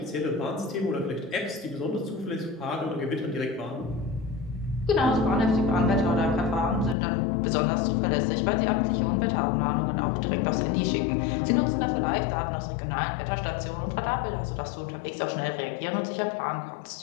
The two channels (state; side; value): drops out; right; at 7.0 s